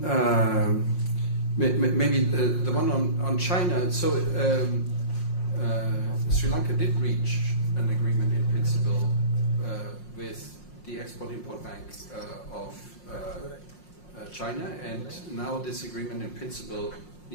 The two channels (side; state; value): right; late; 5.6 ms